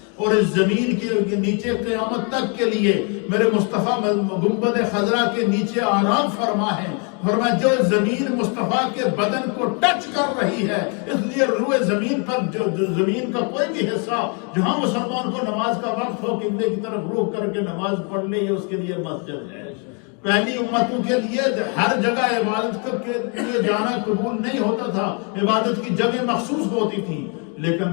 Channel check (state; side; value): quieter; right; 37.0 dB